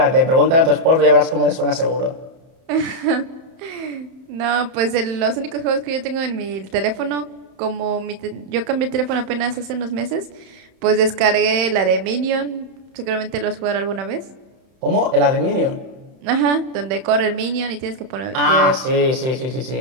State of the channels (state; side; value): late; left; 31 ms